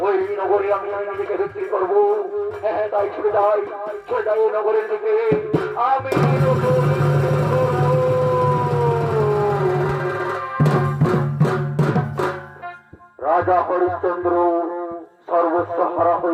ওই নগরে আমি নিজেকে বিক্রি করবো। হ্যাঁ তাই ছুটে যাই নগরের দিকে। আমি রাজা হরিশ্চন্দ্র সর্বস্ব হারা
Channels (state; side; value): identical; both; correlation 1.00